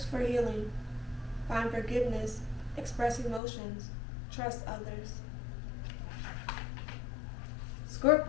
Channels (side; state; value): right; drops out; at 3.4 s